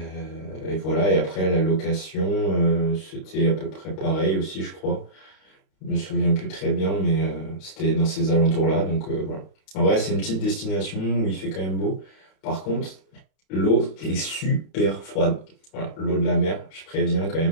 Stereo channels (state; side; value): late; right; 32 ms